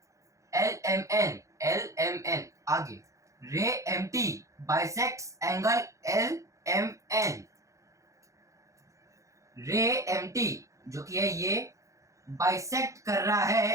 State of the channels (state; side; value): late; left; 0.15 ms